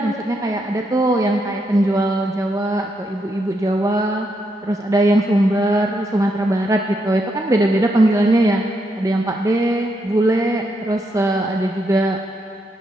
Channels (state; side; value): normal; both; correlation 0.79